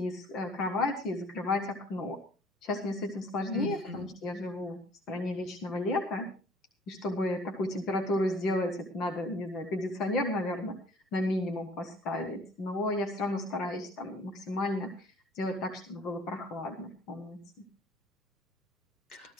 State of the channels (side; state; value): both; normal; correlation 0.54